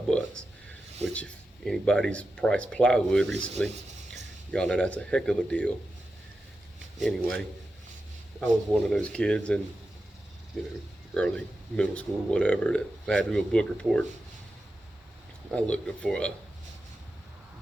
bucks, which if anybody's priced plywood recently, y'all know that's a heck of a deal. Anyway, I was one of those kids in, early middle school, whatever, that if I had to do a book report, I looked up for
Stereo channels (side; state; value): both; normal; correlation 0.91